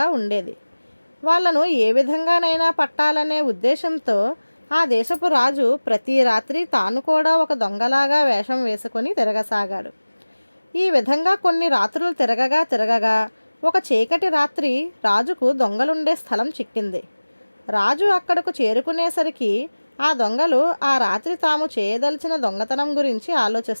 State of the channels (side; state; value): both; inverted; correlation -1.00